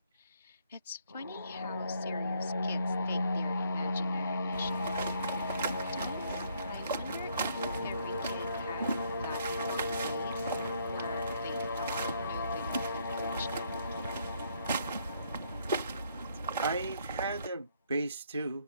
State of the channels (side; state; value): both; inverted; correlation -0.69